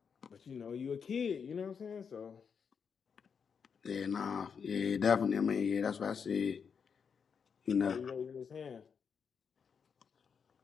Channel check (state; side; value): quieter; right; 6.4 dB